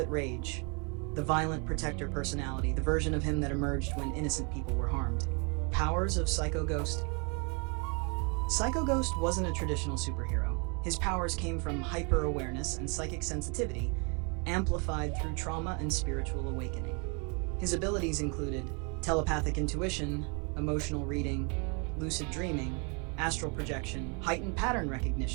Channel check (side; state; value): left; quieter; 34.3 dB